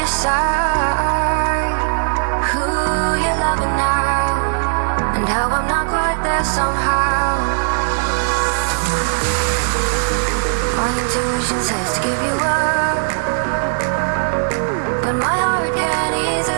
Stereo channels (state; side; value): silent; left; digital silence